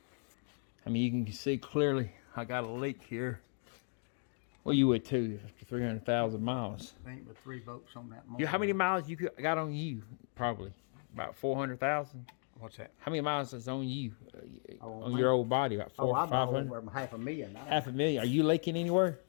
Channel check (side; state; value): right; silent; 54 dB below the other